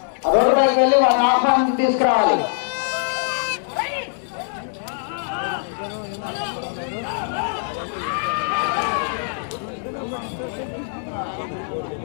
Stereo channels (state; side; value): silent; right; digital silence